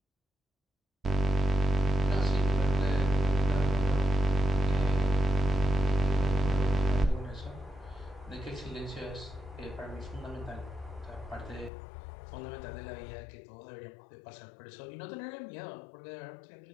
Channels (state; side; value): drops out; right; at 11.7 s